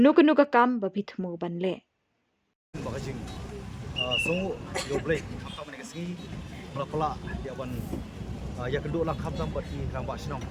kakam ba bitmu banle. Bakajing songu yo break kham ni kasi pala ya wan ya kedua lang kham tam bati rang ba snong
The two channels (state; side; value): identical; both; correlation 1.00